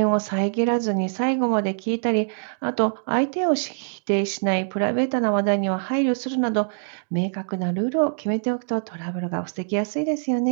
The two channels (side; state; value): left; silent; digital silence